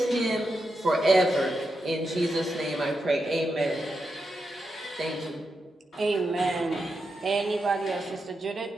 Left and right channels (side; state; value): both; normal; correlation 0.86